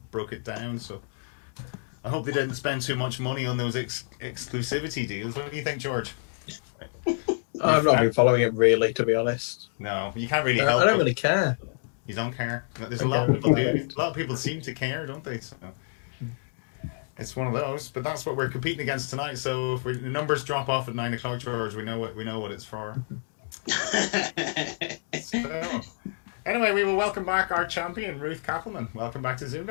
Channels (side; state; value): right; silent; digital silence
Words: broke it down, so I hope they didn't spend too much money on those exclusivity deals. What do you think, George? I've not been following it really, to be honest. No, you can't really help. I don't really care. You don't care. There's a lot of people do. A lot of people seem to care, don't they? So it's one of those. But that's what we're competing against tonight. So if the numbers drop off at 9 o'clock, George, we know what it's for. So, anyway, we will welcome back our champion, Ruth Cappleman. Welcome back to